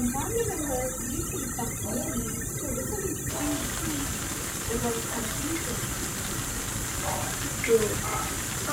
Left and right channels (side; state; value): both; identical; correlation 1.00